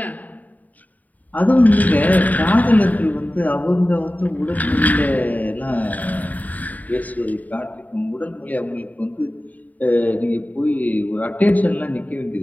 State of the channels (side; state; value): right; late; 0.077 ms